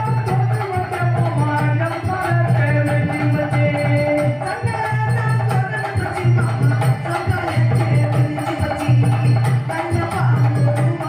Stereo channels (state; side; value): identical; both; correlation 1.00